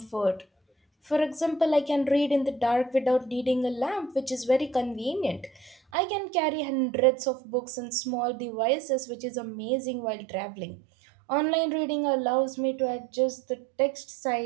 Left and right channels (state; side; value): drops out; left; at 5.8 s